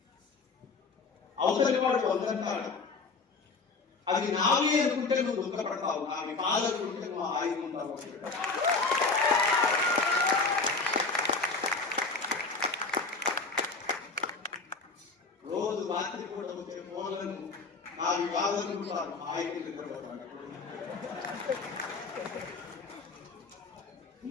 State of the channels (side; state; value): right; quieter; 4.1 dB